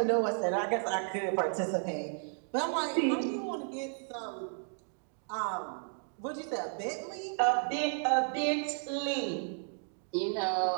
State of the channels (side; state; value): left; silent; 56 dB below the other